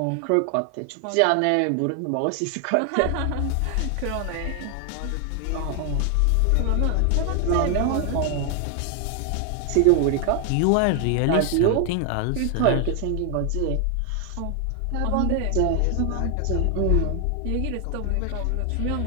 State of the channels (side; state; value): both; different; correlation 0.00